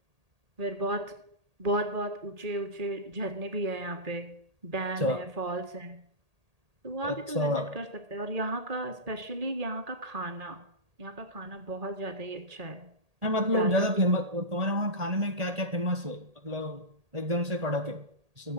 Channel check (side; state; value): left; late; 1.8 ms